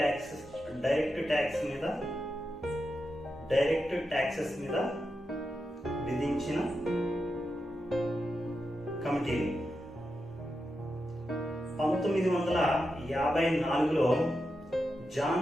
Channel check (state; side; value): normal; both; correlation 0.88